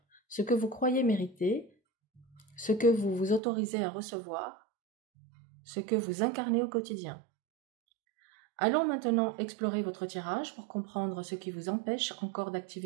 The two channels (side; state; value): left; drops out; at 3.4 s